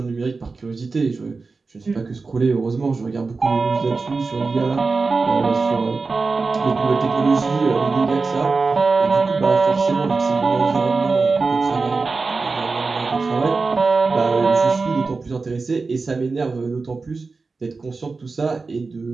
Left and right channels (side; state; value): left; quieter; 4.1 dB